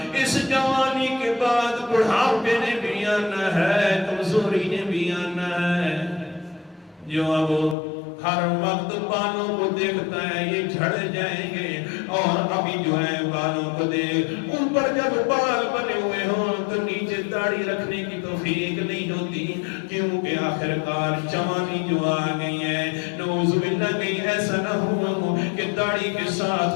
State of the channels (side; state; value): right; drops out; at 7.8 s